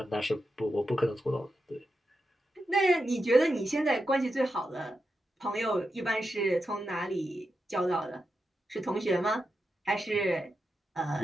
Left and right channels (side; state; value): both; normal; correlation 0.88